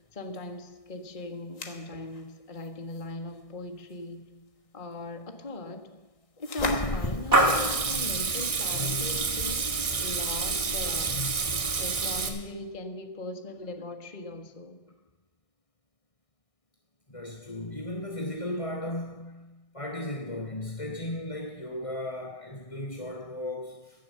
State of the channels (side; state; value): right; late; 1.6 ms